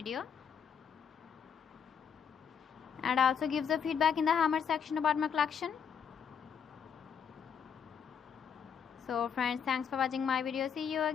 And also give the feedback in the comment section about my collection. So friends, thanks for watching my video. See you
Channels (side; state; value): right; quieter; 7.3 dB